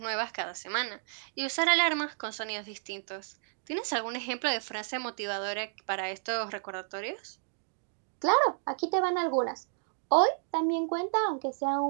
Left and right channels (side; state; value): left; silent; digital silence